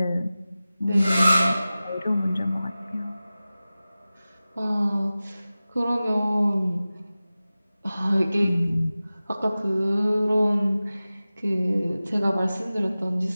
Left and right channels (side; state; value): both; inverted; correlation -0.96